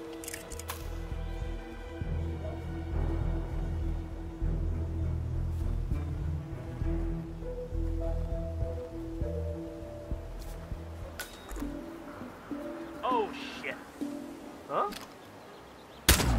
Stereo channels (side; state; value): both; identical; correlation 1.00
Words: Oh, shit. Huh?